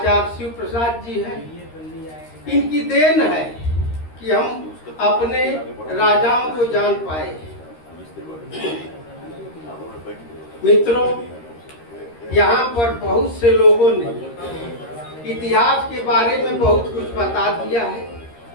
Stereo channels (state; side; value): late; right; 13 ms